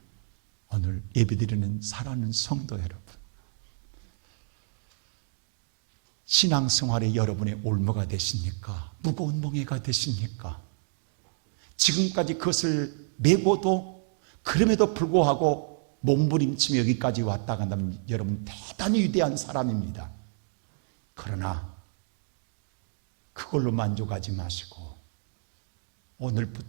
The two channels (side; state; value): left; silent; 59 dB below the other